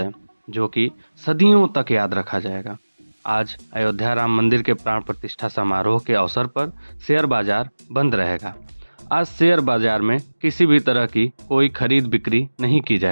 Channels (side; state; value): both; inverted; correlation -1.00